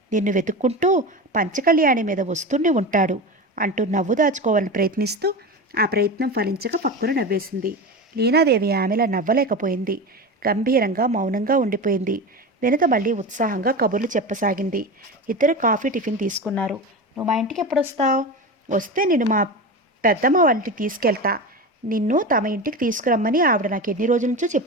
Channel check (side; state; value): both; normal; correlation 0.25